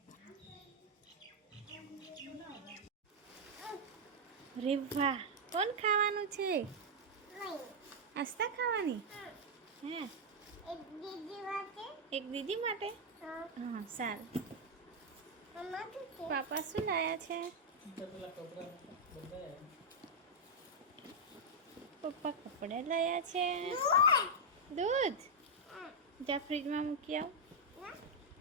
રે વાહ કોણ ખાવાનું છે? આસ્તા ખાવાની હે? એક દીદી માટે. હા સારું. પાપા શું લાયા છે? પપ્પા કપડા લાયા છે. દૂધ જા ફ્રીજમાં મૂકી આવ.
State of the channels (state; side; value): normal; both; correlation -0.03